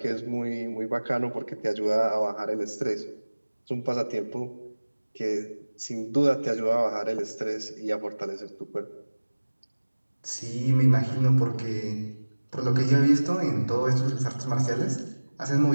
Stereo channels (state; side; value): inverted; both; correlation -1.00